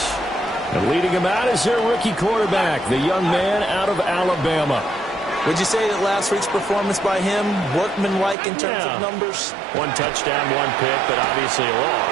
And leading him out is their rookie quarterback, the young man out of Alabama. Would you say that last week's performance by him, workmanlike in terms of numbers? One touchdown, one pick, but obviously a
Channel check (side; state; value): left; drops out; at 8.3 s